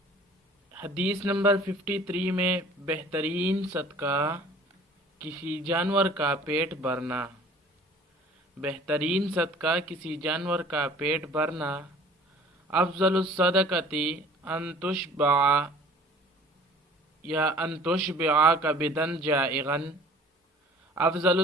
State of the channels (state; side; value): normal; both; correlation 0.49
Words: حدیث نمبر 53 میں بہترین صدقہ کسی جانور کا پیٹ بھرنا۔ بہترین صدقہ کسی جانور کا پیٹ بھرنا۔ افضل الصدقۃ ان تشبع یا ان تشبع کبدا جائعا۔ افضل